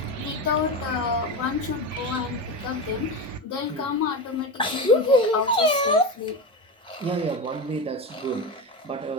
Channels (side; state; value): both; normal; correlation 0.20